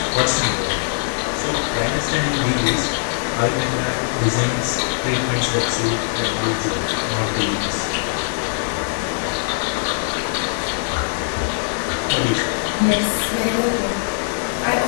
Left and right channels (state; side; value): silent; right; digital silence